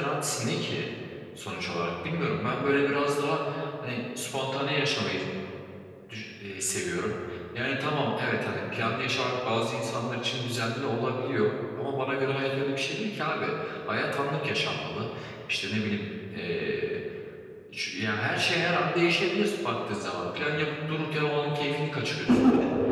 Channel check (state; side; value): identical; both; correlation 1.00